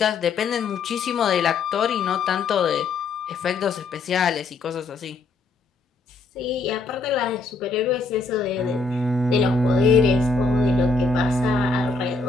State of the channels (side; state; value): right; quieter; 3.9 dB